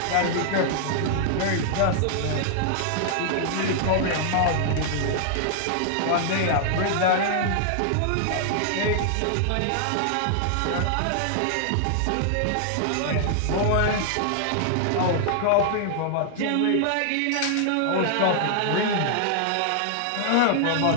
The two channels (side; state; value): both; different; correlation -0.01